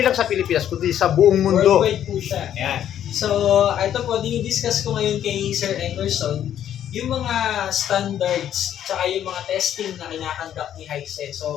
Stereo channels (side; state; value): right; quieter; 10.5 dB